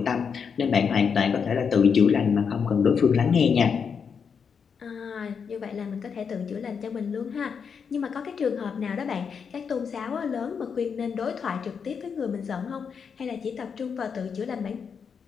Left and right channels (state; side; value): quieter; right; 6.4 dB